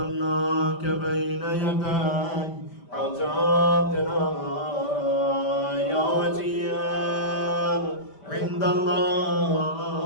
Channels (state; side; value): late; right; 5.1 ms